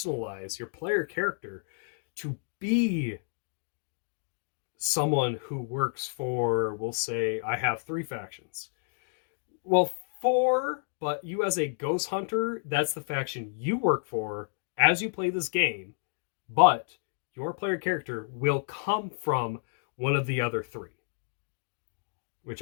your player character to be someone who works for, we'll say, I have 3 factions. Well, 4, but you as a ghost hunter, that's the faction you work for as you play this game, but your player character will come from one of the other 3. Which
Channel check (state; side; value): silent; right; digital silence